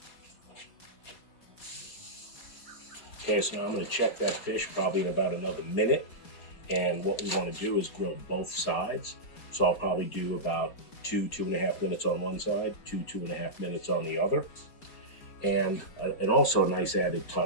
Okay, so now I'm going to check that fish probably in about another minute. And what we want to do is grill both sides. So I'll probably do about 2.5 minutes on one side, 2.5 minutes on the other. And also a nice added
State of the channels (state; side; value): late; right; 4.6 ms